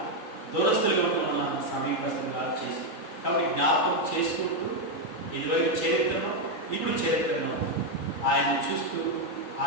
దూరస్తులుగా ఉన్న మనల్ని సమీపస్తులుగా చేసి. కాబట్టి జ్ఞాపకం చేసుకుంటూ ఇదివరకు చరిత్రను, ఇప్పుడు చరిత్రను ఆయన చూస్తూ,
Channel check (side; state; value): right; late; 3.8 ms